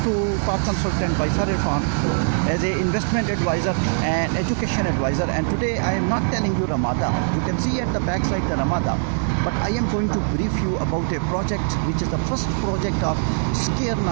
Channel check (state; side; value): silent; left; digital silence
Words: to Park Consultant by Sir Irfan as an investment advisor and education advisor. And today I am not telling you Ramada. You can see at the back side the Ramada. But I am going to brief you about a project which is the first project of Scare